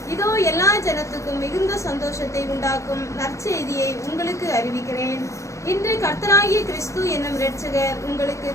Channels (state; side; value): late; right; 0.15 ms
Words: இதோ எல்லா ஜனத்துக்கும் மிகுந்த சந்தோஷத்தை உண்டாக்கும் நற்செய்தியை உங்களுக்கு அறிவிக்கிறேன். இன்று கர்த்தராகிய கிறிஸ்து என்னும் இரட்சகர் உங்களுக்கு